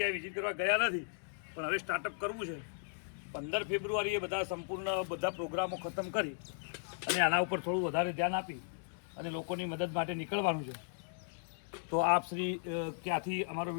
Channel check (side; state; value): right; silent; digital silence